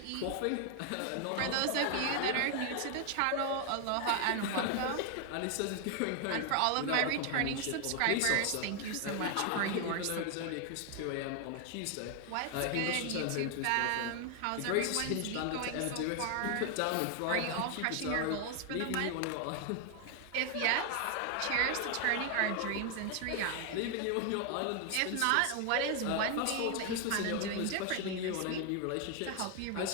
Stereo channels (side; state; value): both; different; correlation 0.00